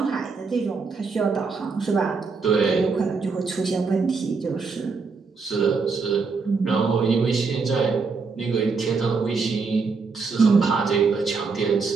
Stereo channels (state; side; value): quieter; left; 4.7 dB